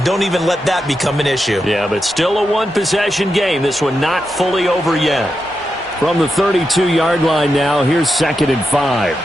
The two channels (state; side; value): normal; both; correlation 0.87